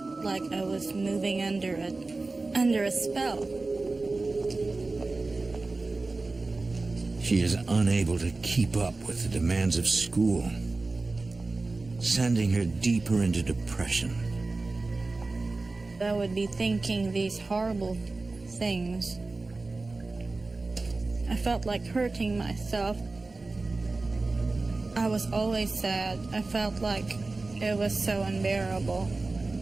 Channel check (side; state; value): left; quieter; 3.4 dB